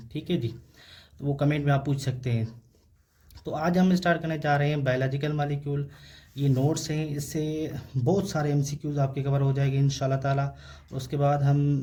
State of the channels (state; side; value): identical; both; correlation 1.00